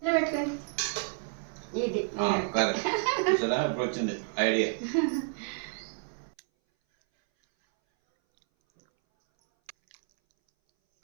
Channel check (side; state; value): left; silent; 58 dB below the other